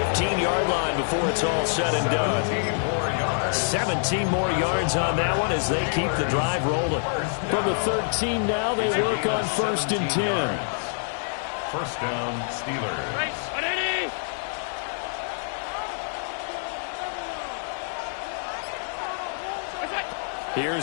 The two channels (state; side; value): silent; right; digital silence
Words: line before it's all said and done. 17 more yards on that one as they keep the drive rolling. From the 13 now, they work on first and 10. First down, Steelers.